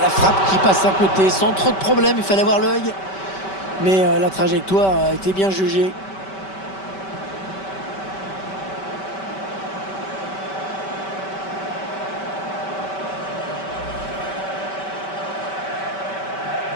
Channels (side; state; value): right; late; 5.2 ms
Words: frappe qui passe à côté sans trop de problèmes. Il fallait avoir l'œil. Mais la trajectoire a été bien jugée.